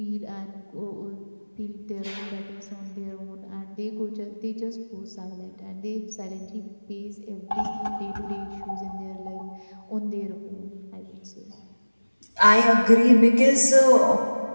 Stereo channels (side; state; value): both; inverted; correlation -1.00